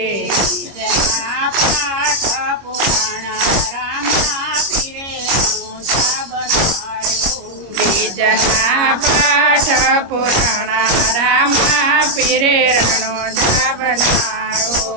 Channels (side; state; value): left; late; 25 ms